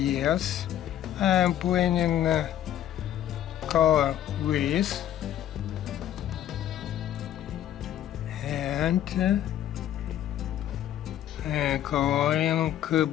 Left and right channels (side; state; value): right; quieter; 11.4 dB